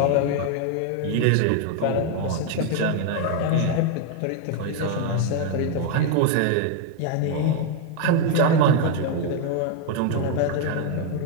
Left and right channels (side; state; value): both; different; correlation 0.01